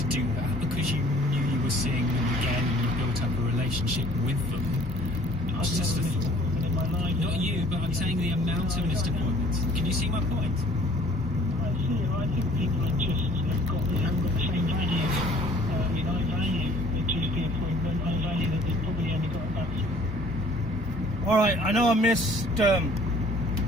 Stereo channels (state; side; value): normal; both; correlation 0.54